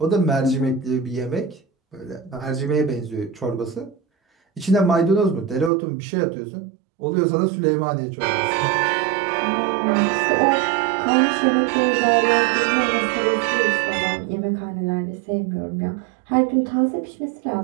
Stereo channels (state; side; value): drops out; left; at 5.7 s